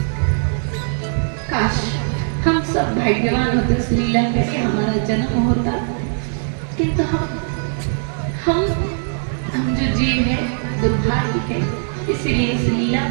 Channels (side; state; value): left; silent; 64 dB below the other